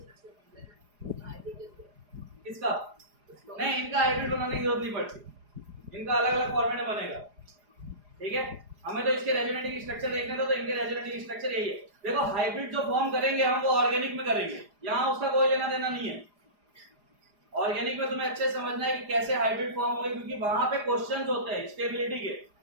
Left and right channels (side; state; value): left; late; 4.9 ms